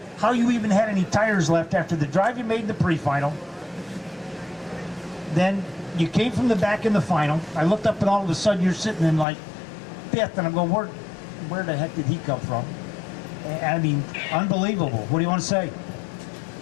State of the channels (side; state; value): right; drops out; at 9.2 s